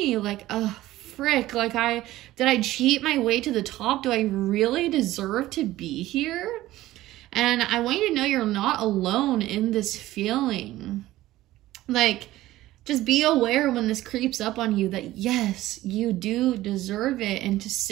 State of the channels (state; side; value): quieter; left; 15.9 dB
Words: Like, frick. Like, did I cheat my way to the top? Do I really deserve to be here? And I want you to know you're not alone in this feeling. Like, just be aware when this creeps up on you that yes, you do deserve it, and to